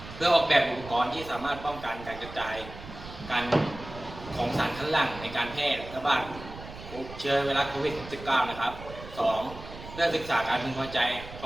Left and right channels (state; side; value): noise; right; rumble, 14 dB below the sound